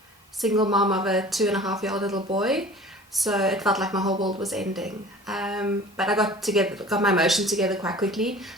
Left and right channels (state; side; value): normal; both; correlation 0.43